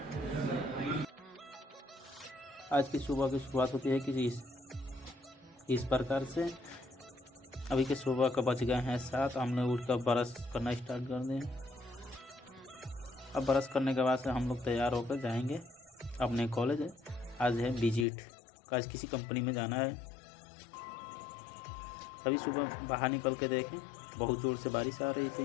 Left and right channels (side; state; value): right; drops out; at 18.1 s